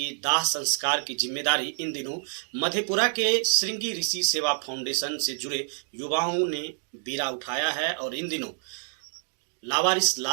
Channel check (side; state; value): left; silent; 60 dB below the other